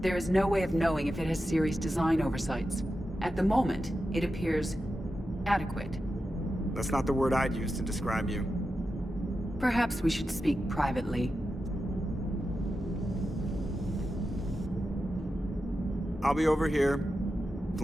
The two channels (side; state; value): both; normal; correlation 0.90